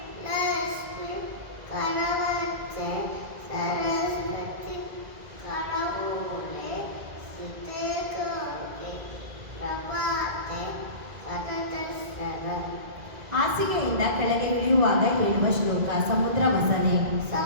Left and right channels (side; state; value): left; late; 2.0 ms